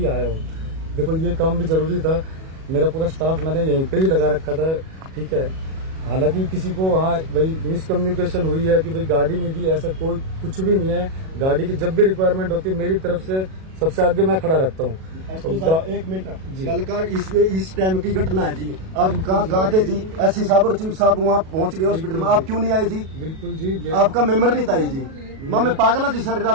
आया हूँ। देखो ये काम भी जरूरी था, मेरा पूरा स्टाफ मैंने यहीं पे ही लगा रखा था, ठीक है। हालांकि किसी को वहाँ भाई मिसकम्युनिकेशन हुई है कि भाई गाड़ी नहीं दी, ऐसा कोई कुछ भी नहीं है। गाड़ी की जब भी रिक्वायरमेंट होती है मेरी तरफ से सबसे आगे मैं खड़ा रहता हूँ। एक मिनट जी, कल का इस टाइम की घटना है जी। आप कहाँ थे जी? एसपी साहब और चीफ साहब वहाँ पहुँच गए हॉस्पिटल में, आप क्यों नहीं आए जी? बिल्कुल जी, आपका मेंबर नहीं था जी। माँ मैं पागल जी, सारी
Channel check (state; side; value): late; left; 37 ms